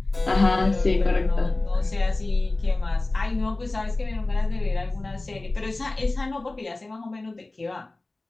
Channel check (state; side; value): quieter; right; 3.0 dB